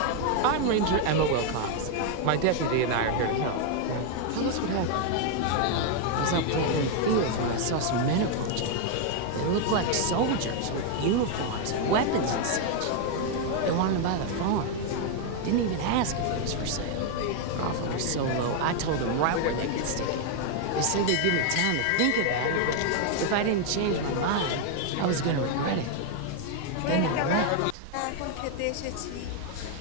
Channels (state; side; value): different; both; correlation 0.00